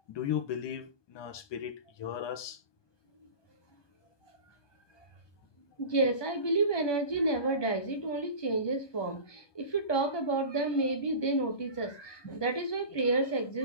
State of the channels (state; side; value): late; right; 1.2 ms